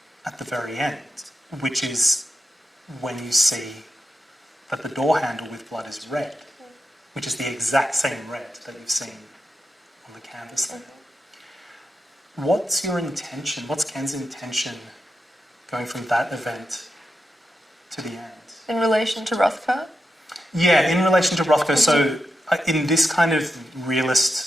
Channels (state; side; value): normal; both; correlation 0.88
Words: at the very end, which is when you see that the door handle with blood is red, which is the exact same red that you've seen on the canvas there. What's your intention? What's Ken's intention going from that event to the end? In relation to Rothko? Yeah, in relation to Rothko. So in this kind of